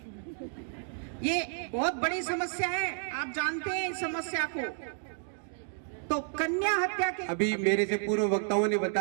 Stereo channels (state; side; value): silent; left; 57 dB below the other